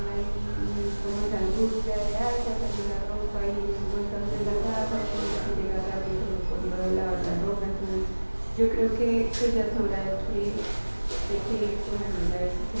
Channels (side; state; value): both; inverted; correlation -1.00